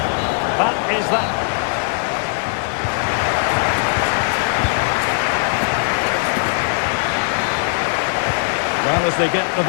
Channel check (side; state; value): right; silent; digital silence